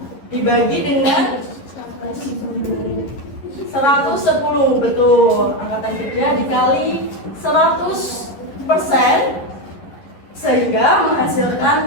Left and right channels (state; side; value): late; right; 11 ms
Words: dibagi dengan 110, betul. Angkatan kerja dikali 100% sehingga